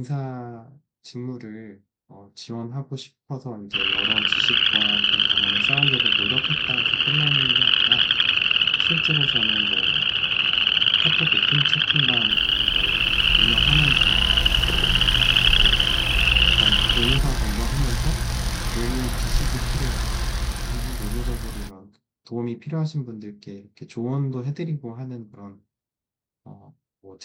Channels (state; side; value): identical; both; correlation 1.00